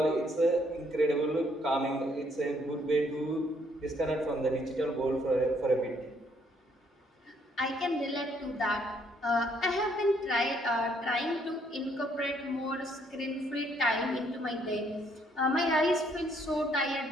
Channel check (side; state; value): both; normal; correlation 0.68